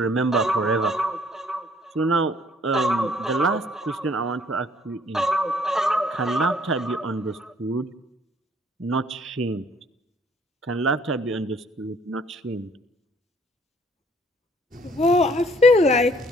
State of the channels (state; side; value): normal; both; correlation 0.61